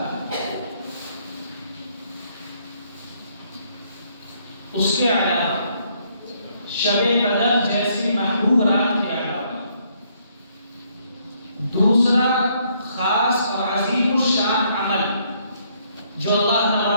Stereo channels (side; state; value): both; inverted; correlation -0.69